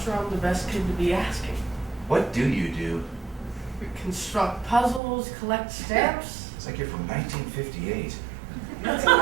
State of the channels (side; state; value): left; drops out; at 5.0 s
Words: sure I'm the best kid to be asking. What do you do? Construct puzzles, collect stamps. It's like you're from 1958. That's